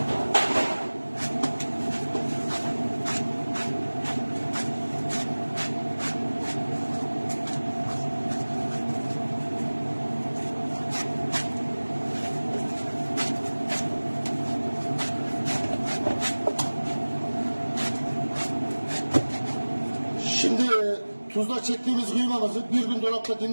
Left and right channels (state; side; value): inverted; both; correlation -1.00